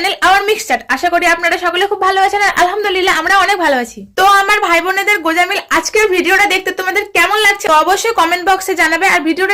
our Mix Chat. আশা করি আপনারা সকলে খুব ভালো আছেন, আর আলহামদুলিল্লাহ আমরা অনেক ভালো আছি। তো আমার ভাই বোনেদের গোজামিল আজকের ভিডিওটা দেখতে তোমাদের কেমন লাগছে অবশ্যই কমেন্ট বক্সে জানাবে, আর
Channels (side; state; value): both; identical; correlation 1.00